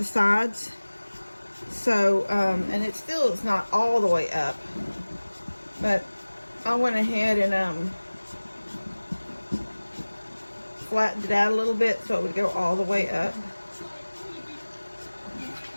sides. So, and it still is not all the way up, but I went ahead and flattened it out a little bit so it would go all the way up.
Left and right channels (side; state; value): both; inverted; correlation -1.00